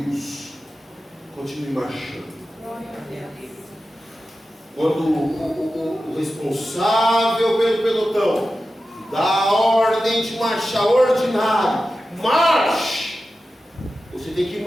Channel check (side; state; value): both; normal; correlation 0.93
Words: Continue marchando. Quando o responsável pelo pelotão dá a ordem de marchar ordinário, marche. Você tem que